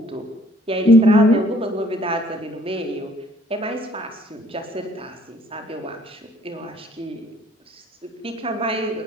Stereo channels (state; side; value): normal; both; correlation 0.59